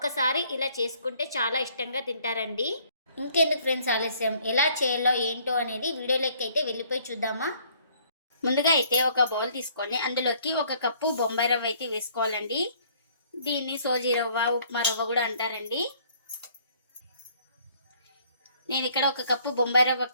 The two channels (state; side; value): inverted; both; correlation -0.61